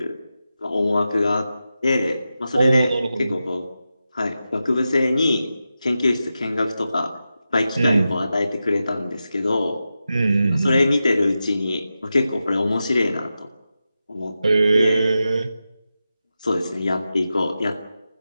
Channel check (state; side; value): inverted; both; correlation -0.91